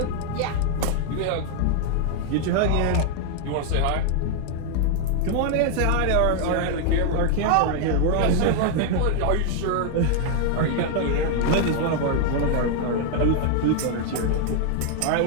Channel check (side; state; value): both; different; correlation 0.00